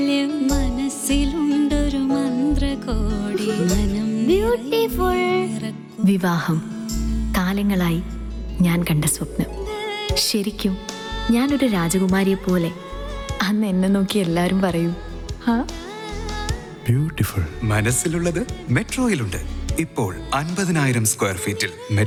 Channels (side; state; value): both; identical; correlation 1.00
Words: മനസ്സിലുണ്ടൊരു മന്ത്രകോടി, മനം ബ്യൂട്ടിഫുൾ. വിവാഹം കാലങ്ങളായി ഞാൻ കണ്ട സ്വപ്നം. ശരിക്കും ഞാനൊരു രാജകുമാരിയെ പോലെ അന്ന് എന്നെ നോക്കി എല്ലാവരും പറയും Beautiful. മനസ്സിലുള്ളത് മെട്രോയിലുണ്ട്. ഇപ്പോൾ 50,000 സ്ക്വയർ ഫീറ്റിൽ